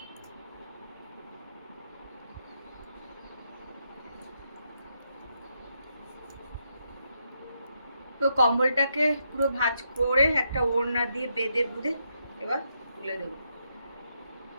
তো কম্বলটাকে পুরো ভাঁজ করে একটা ওড়না দিয়ে বেঁধে বুঁধে এবার তুলে দেবো।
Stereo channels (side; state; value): both; inverted; correlation -0.80